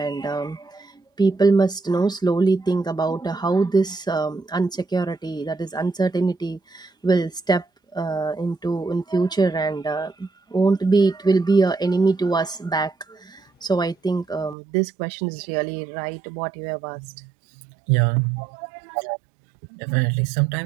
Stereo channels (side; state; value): left; drops out; at 14.6 s